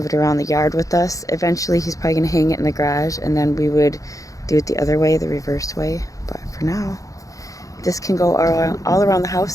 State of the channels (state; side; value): late; right; 0.16 ms